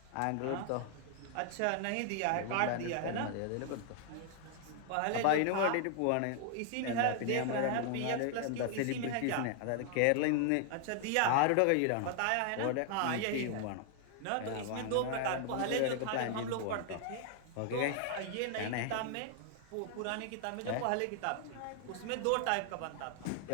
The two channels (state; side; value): different; both; correlation 0.00